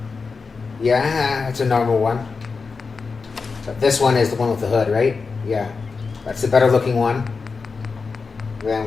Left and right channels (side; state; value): right; quieter; 4.7 dB